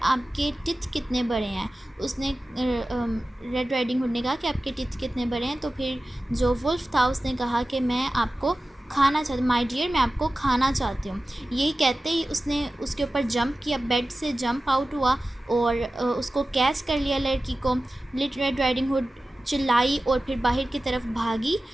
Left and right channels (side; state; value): both; normal; correlation 0.95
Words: आपके टिथ कितने बड़े हैं। उसने रेड राइडिंग हुड ने कहा कि आपके टिथ कितने बड़े हैं। तो फिर जो वुल्फ था उसने कहा कि मैं आपको खाना चाहती, माय डियर, मैं आपको खाना चाहती हूँ। यही कहते ही उसने उसके ऊपर जंप किया, बेड से जंप आउट हुआ और उसको कैच कर लिया लड़की को। लिटिल रेड राइडिंग हुड चिल्लाई और फिर बाहर की तरफ भागी।